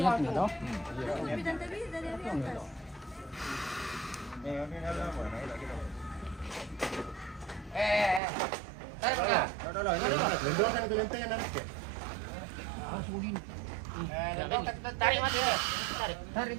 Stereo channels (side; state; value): left; drops out; at 8.2 s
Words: toh. Belum kan paling tekan nanti. Tarik mati. Tarik